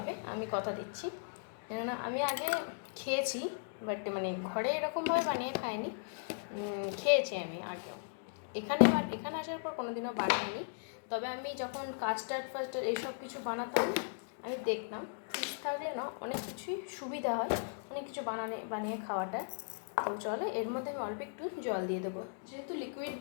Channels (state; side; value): silent; right; digital silence